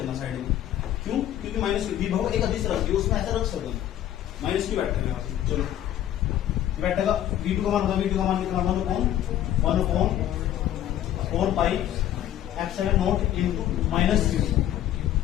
साइड में। क्यों? क्योंकि माइनस विभव एक अधिक राशि है, उसमें ऐसा रख सकते हैं माइनस क्यों बैठेगा यहाँ पे। चलो बैठेगा V2 का मान होगा, V2 का मान कितना 1/4 pi epsilon not into minus Q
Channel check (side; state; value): right; quieter; 11.9 dB